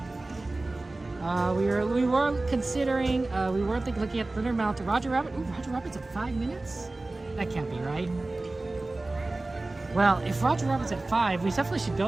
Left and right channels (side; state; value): left; quieter; 3.0 dB